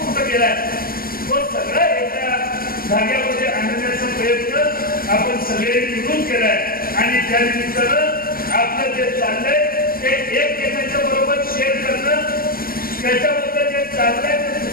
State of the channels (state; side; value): late; right; 0.43 ms